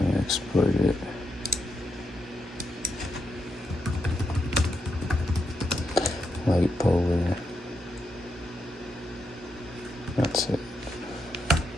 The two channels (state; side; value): normal; both; correlation 0.83